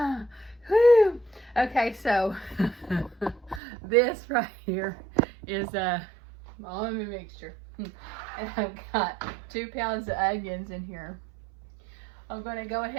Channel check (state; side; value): drops out; left; at 3.6 s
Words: Whew. Okay, so this right here is a almond mixture. And I've got 2 pounds of onions in here. I'm going to go